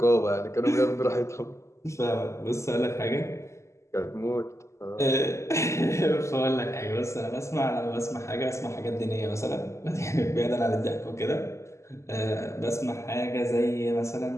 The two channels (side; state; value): right; late; 0.14 ms